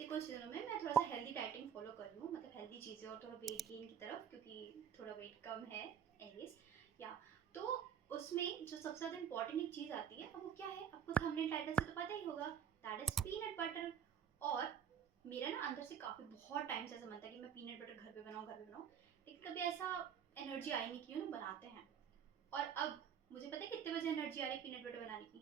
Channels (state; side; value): quieter; left; 8.6 dB